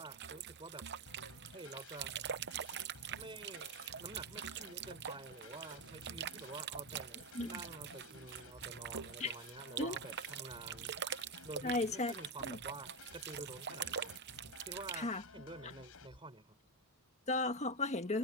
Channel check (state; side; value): normal; both; correlation 0.11